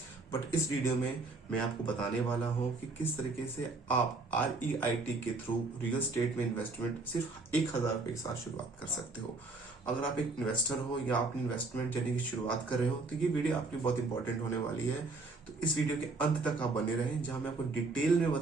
बट इस वीडियो में मैं आपको बताने वाला हूँ कि किस तरीके से आप REIT के थ्रू रियल स्टेट में इन्वेस्टमेंट सिर्फ 1,000 रुपए के साथ शुरुआत कर सकते हो। अगर आप एक इन्वेस्टर हो या अपनी इन्वेस्टमेंट जर्नी की शुरुआत कर रहे हो तो ये वीडियो आपकी बहुत इंपॉर्टेंट होने वाली है। तो इस वीडियो के अंत तक आप बने रहें, जहां मैं आपको डिटेल में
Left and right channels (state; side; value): quieter; left; 3.6 dB